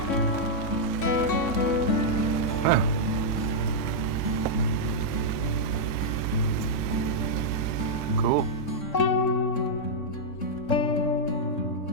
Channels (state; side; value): late; right; 3.6 ms